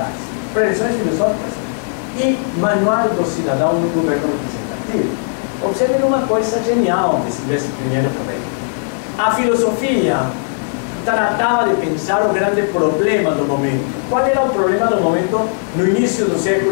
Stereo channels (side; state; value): right; silent; digital silence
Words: Preleções Filosóficas e Manual do Cidadão no Governo Representativo. Observem uma coisa genial de Silvestre Pinheiro Ferreira. A filosofia tratava de pensar o grande problema do momento. Qual era o problema do momento no início do